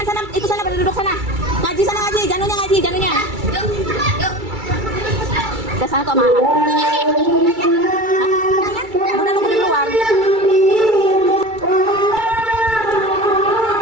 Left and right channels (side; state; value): left; late; 2.3 ms